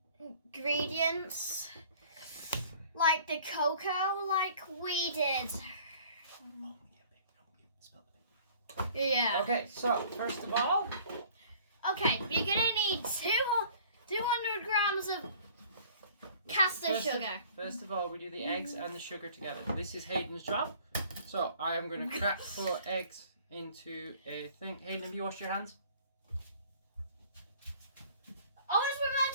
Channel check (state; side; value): inverted; both; correlation -0.52